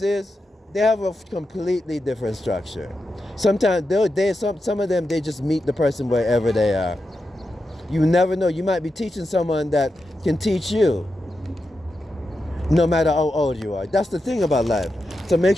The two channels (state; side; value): normal; both; correlation 0.88